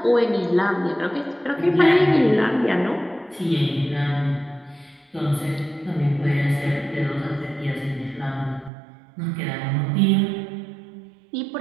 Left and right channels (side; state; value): left; drops out; at 8.7 s